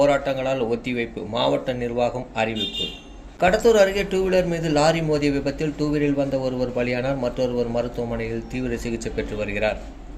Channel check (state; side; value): identical; both; correlation 1.00